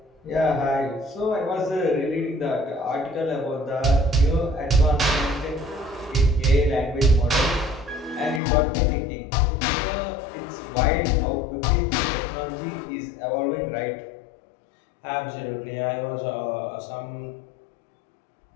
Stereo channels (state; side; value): drops out; right; at 8.4 s